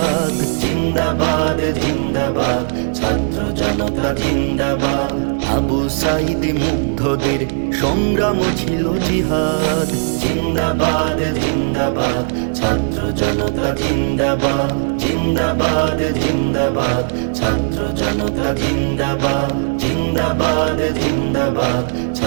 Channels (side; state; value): left; silent; digital silence